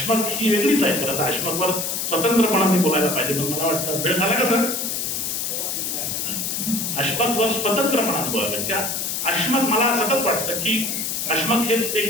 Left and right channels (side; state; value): left; noise; hiss, 2 dB below the sound